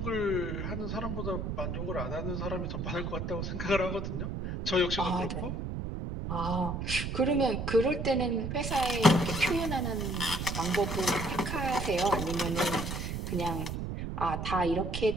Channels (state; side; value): noise; right; rumble, 4 dB below the sound